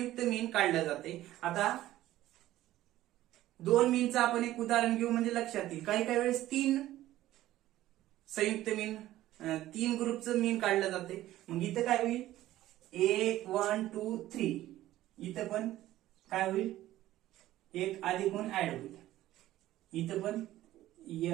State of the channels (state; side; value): quieter; left; 14.7 dB